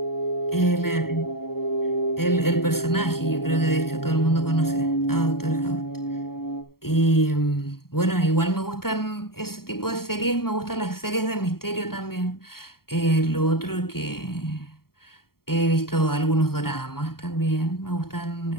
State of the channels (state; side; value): late; right; 0.94 ms